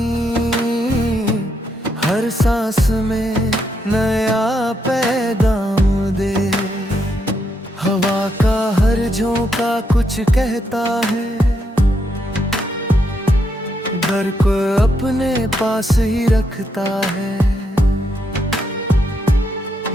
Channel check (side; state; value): both; normal; correlation 0.78